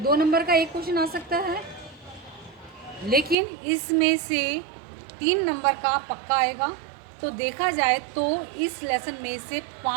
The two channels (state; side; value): drops out; left; at 3.4 s